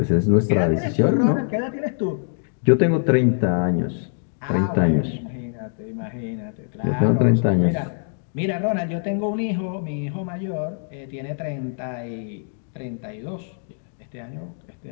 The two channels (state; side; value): silent; right; digital silence